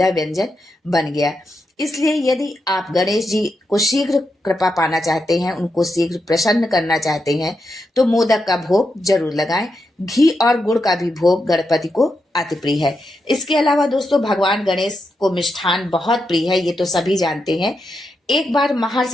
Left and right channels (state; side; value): normal; both; correlation 0.85